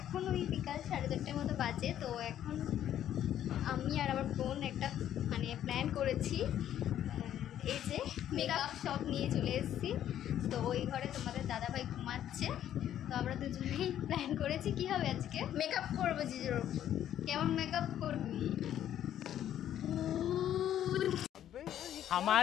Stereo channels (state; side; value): quieter; right; 11.0 dB